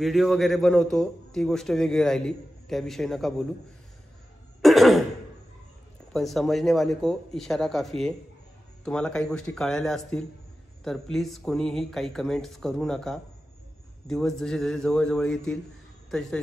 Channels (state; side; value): normal; both; correlation 0.93